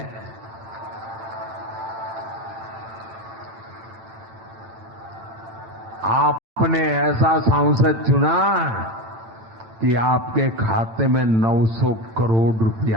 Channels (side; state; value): left; late; 8.9 ms